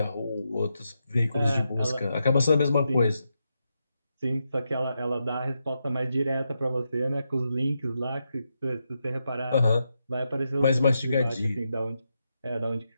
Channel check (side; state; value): both; inverted; correlation -0.85